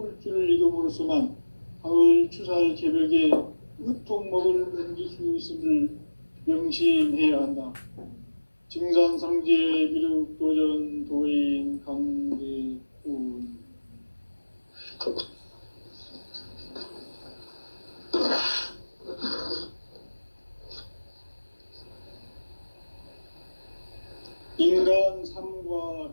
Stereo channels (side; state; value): both; inverted; correlation -1.00